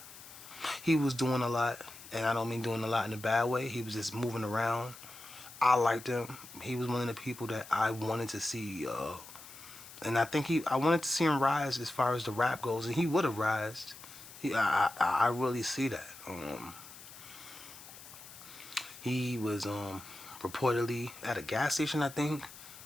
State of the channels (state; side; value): noise; left; hiss, 17 dB below the sound